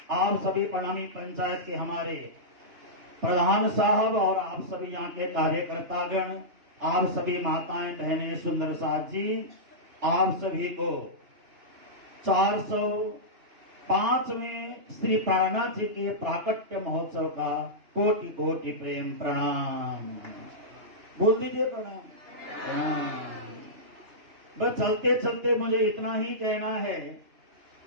आप सभी प्रणामी पंचायत के हमारे प्रधान साहब और आप सभी यहाँ के कार्यकर्तागण, आप सभी माताएं बहनें, सुंदर साथ जी, आप सभी को 405वें श्री प्राणनाथ जी के प्राकट्य महोत्सव का कोटि कोटि प्रेम प्रणाम। बोल दीजिए प्रणाम। बस चलते चलते मुझे इतना ही कहना है,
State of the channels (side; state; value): left; late; 2.9 ms